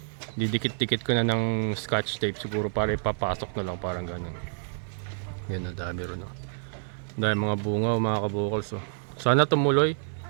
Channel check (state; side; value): silent; left; 58 dB below the other